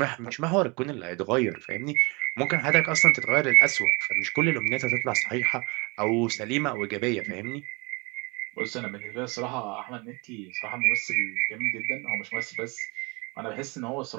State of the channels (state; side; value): quieter; left; 28.3 dB